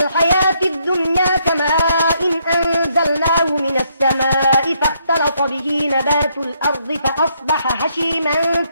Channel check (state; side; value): inverted; both; correlation -0.74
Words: الحياة الدنيا كماء أنزلناه من السماء فاختلط به نبات الأرض فأصبح هشيما